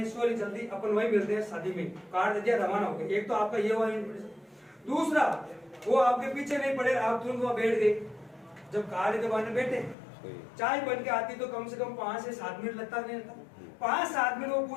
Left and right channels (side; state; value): right; drops out; at 10.0 s